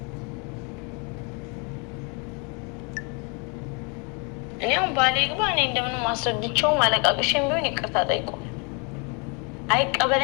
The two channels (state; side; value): quieter; right; 33.7 dB